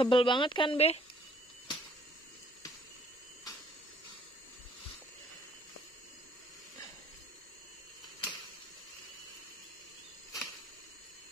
banget kan, Be?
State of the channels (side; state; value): both; normal; correlation 0.60